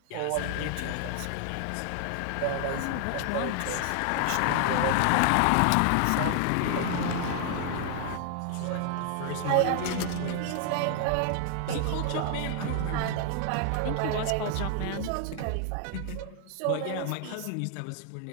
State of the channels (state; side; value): different; both; correlation 0.00